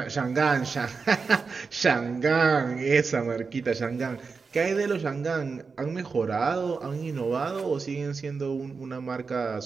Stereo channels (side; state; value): left; quieter; 4.9 dB